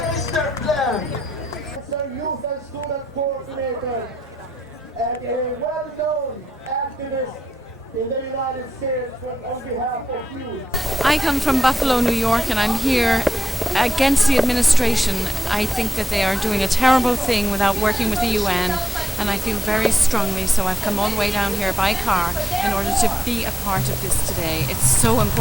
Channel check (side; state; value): both; normal; correlation 0.87